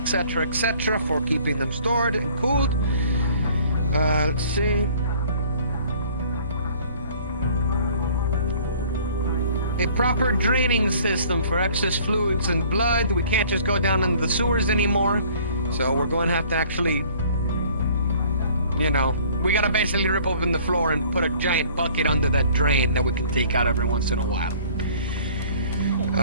for keeping them stored and cooled. Let's see. A proper draining system for excess fluids and blood. We can't just go down into the sewers anymore, so we're going to have to actually, we gotta basically rip open the floor and put a giant bucket under that drain that we can take out every once in a while.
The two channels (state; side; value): inverted; both; correlation -0.54